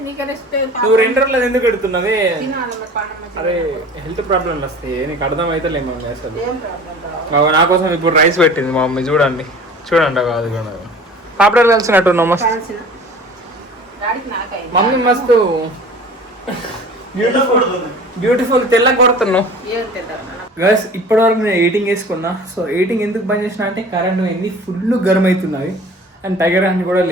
నువ్వు 2 రోజులు ఎందుకు పెడుతున్నది? అదే హెల్త్ ప్రాబ్లమ్లు వస్తాయి, నీకు అర్థం అయితే లేదు మమ్మీ. అసలు నా కోసం ఇప్పుడు రైస్ పెట్టింది మా మమ్మీ. చూడండి కాదు పాపడాలు కలిసినట్టు మస్తు మమ్మీ, మస్తు బ్యూటిఫుల్ తెల్ల కొడుతున్నావు గైస్. ఇప్పటి వరకు నేను ఎడిటింగ్ వేసుకున్నా. సో ఎడిటింగ్ ఎందుకు బంద్ చేసిన అంటే కరెంట్ పోయింది, ఫుల్ గరం అవుతున్నది. అండ్ టైగర్ అని కూడా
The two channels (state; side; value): normal; both; correlation 0.43